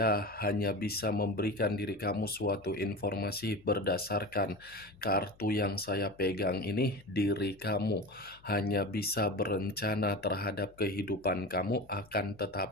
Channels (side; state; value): left; noise; hum, 27 dB below the sound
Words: hanya bisa memberikan diri kamu suatu informasi berdasarkan kartu yang saya pegang ini. Diri kamu hanya bisa berencana terhadap kehidupan kamu, akan